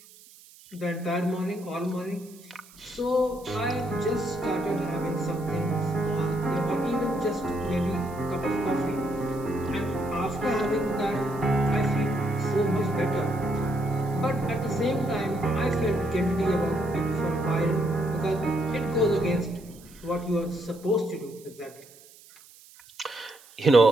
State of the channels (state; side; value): noise; right; hiss, 23 dB below the sound